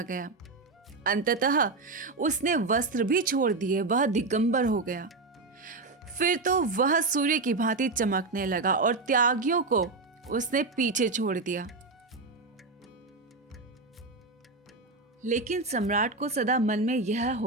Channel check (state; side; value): quieter; left; 3.7 dB